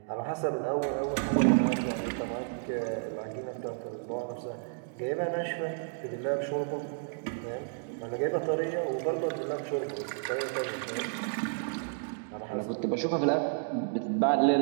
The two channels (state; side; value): silent; left; digital silence